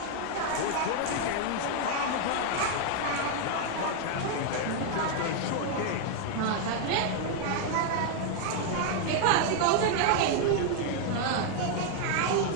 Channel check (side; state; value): both; different; correlation 0.00